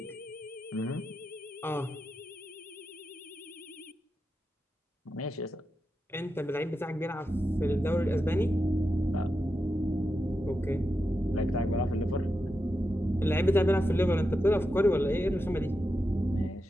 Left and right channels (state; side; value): normal; both; correlation 0.88